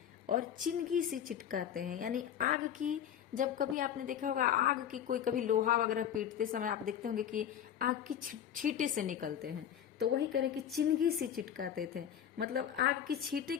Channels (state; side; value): quieter; right; 9.6 dB